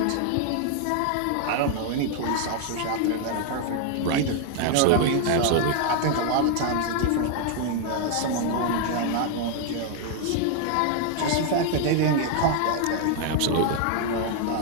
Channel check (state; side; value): different; both; correlation 0.00